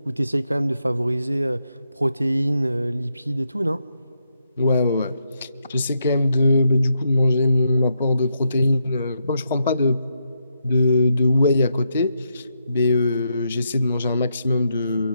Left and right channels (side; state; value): both; inverted; correlation -0.81